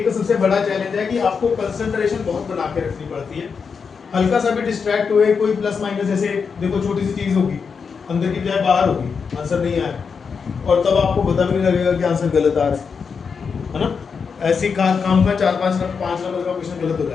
तो सबसे बड़ा चैलेंज है कि आपको कंसंट्रेशन बहुत बना के रखनी पड़ती है। हल्का सा भी डिस्ट्रैक्ट हुए, कोई प्लस माइनस, जैसे देखो छोटी सी चीज़ होगी, अंदर की बजाय बाहर होगी, आंसर नहीं आया, और तब आपको पता भी नहीं लगेगा कि आंसर गलत आ रहा है ना। ऐसी काम का 4-5 नंबर का क्वेश्चन गलत हो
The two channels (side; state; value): right; quieter; 5.8 dB